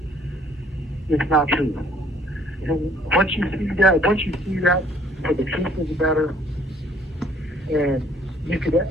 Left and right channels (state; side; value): normal; both; correlation 0.60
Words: it's not true. And once you see that, for the truth of the matter, and you can